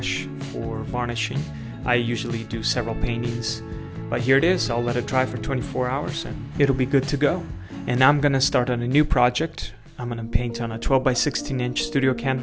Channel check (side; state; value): both; identical; correlation 1.00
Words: for varnishing. I usually do several paintings, but here it is. I'll let it dry for 24 hours and it'll be good to go. And I'm gonna start on a new project. I'm gonna paint on a 12 by 16 inch studio